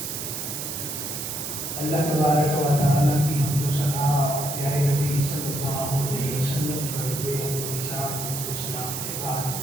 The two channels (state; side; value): noise; right; hiss, 5 dB below the sound